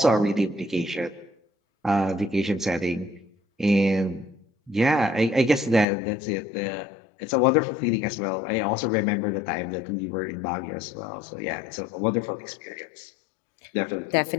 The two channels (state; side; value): drops out; right; at 5.9 s